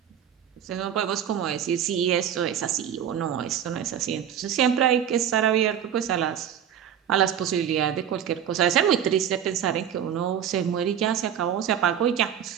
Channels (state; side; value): quieter; left; 9.3 dB